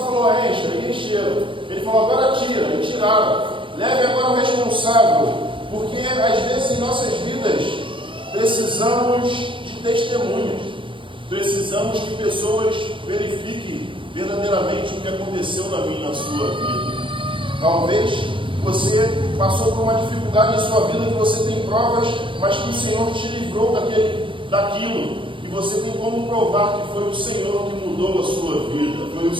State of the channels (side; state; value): left; late; 0.25 ms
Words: encha, e encheram. Ele falou: agora tira, e tiraram. Leve agora o responsável. Porque às vezes em nossas vidas precisamos de testemunhas. Precisamos que pessoas verifiquem verdadeiramente o que aconteceu na minha e na sua vida. Talvez você passou por uma dificuldade em sua vida, que você tem provas, mas que o Senhor te livrou daquilo. E você tem como provar que foi o Senhor que mudou a sua vida, foi o